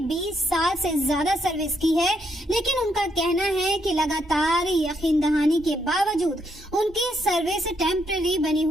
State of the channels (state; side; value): normal; both; correlation 0.76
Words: 20 साल से ज्यादा सर्विस की है, लेकिन उनका कहना है कि लगातार यकीन दहानी के बावजूद उनकी सर्विस टेम्पररी बनी